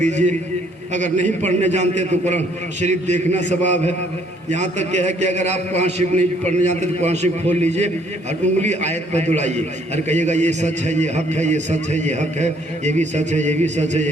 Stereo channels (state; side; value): normal; both; correlation 0.64